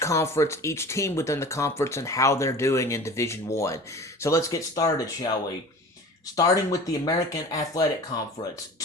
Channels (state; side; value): normal; both; correlation 0.39